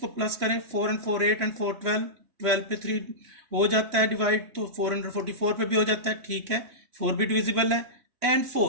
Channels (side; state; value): left; late; 3.0 ms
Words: प्लस करें, 4 and 4 8 and 4 12, 12 पे 3 हो जाता है डिवाइड, तो 444 पे भी हो जाता है, ठीक है। 4 भी डिविजिबल है एंड